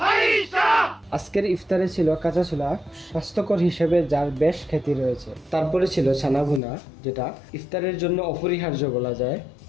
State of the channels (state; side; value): drops out; right; at 6.6 s